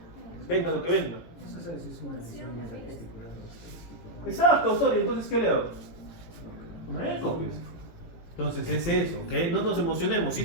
Venga lo que venga. Eso sabes si es una lesión testicular o testicular. Exacto, Osorio. Entonces, ¿qué le hago? Una eco, pues. Entonces es eso, ¿ok? No nos emocionemos. Sí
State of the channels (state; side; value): late; right; 18 ms